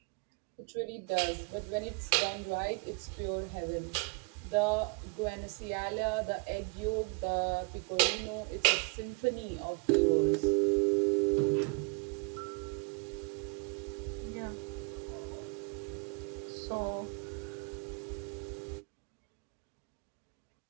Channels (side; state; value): left; quieter; 34.6 dB